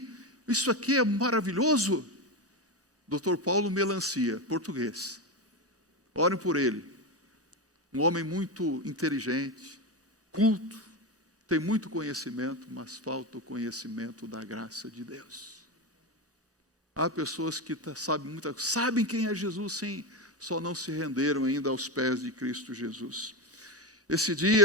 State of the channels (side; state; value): both; normal; correlation 0.15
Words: Isso aqui é maravilhoso. Dr. Paulo Melancia, português. Orem por ele. Um homem muito inteligente, culto, tem muito conhecimento, mas falta o conhecimento da graça de Deus. Há pessoas que sabem quem é Jesus, sim, só não se renderam ainda aos pés de Cristo Jesus. Esse